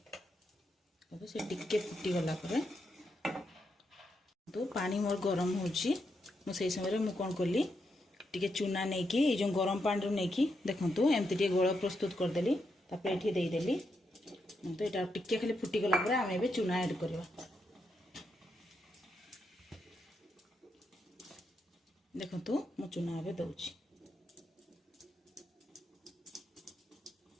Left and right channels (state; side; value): normal; both; correlation 0.82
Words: से टिके फुटी गला तो पानी मोर गरम होची मुझे समय मु कौन कली टिके चूना नहीं कि जो गरम पानी रू नहीं देखु एमती टे गोल प्रस्तुत करदेली ये देदेली तो यहाँ टिके खाली फुटी गला आम ए चूना ऐड करवा देखु मु चूना ए दौची